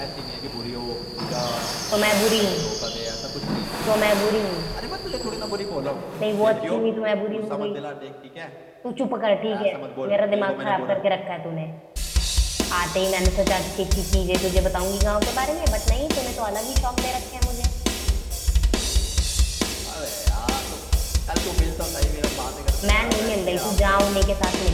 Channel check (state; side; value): identical; both; correlation 1.00